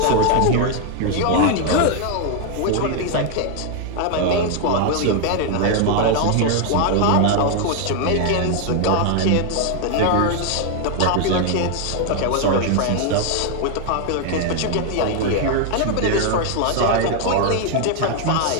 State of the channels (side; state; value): both; different; correlation 0.00